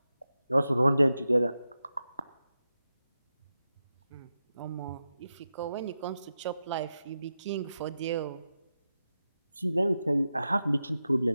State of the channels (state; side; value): inverted; both; correlation -0.90